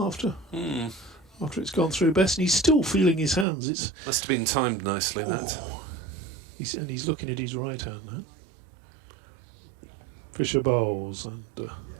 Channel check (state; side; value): drops out; left; at 3.5 s